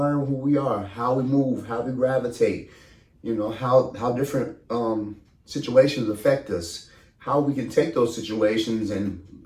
who we are, how we move, how we gravitate, you know, how different situations affect us, how we can take those situations and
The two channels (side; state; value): both; identical; correlation 1.00